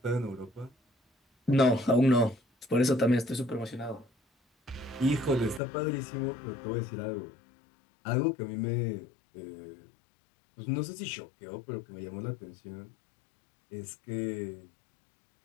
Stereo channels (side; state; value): right; drops out; at 5.6 s